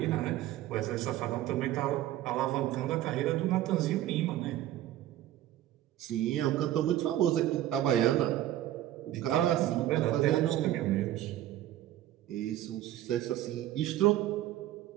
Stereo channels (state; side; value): quieter; left; 13.5 dB